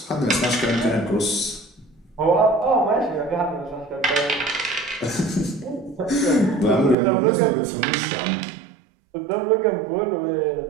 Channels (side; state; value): left; drops out; at 7.0 s